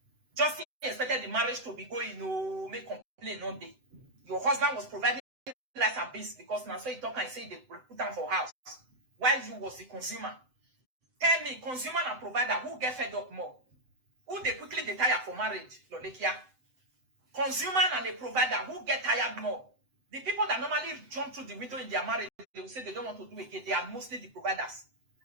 Justin expected the marriage to be going, make complaint one day. Your husband was providing rice and beans because now so he talk and say they put them for house. While you was the consumer. Tell me, consumer and provider, who get fed up more? Who they quickly they tire for marriage, Lolekia? Consumer and a provider, who get tired more? The people that normally jump through the window in their marriage, they will say they don't want to do it again. They are mostly the providers.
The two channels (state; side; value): late; left; 7.8 ms